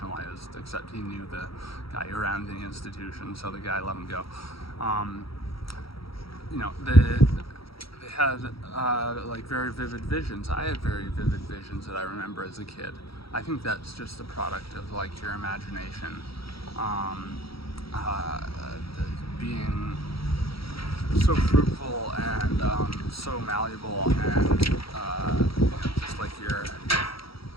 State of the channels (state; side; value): late; right; 0.75 ms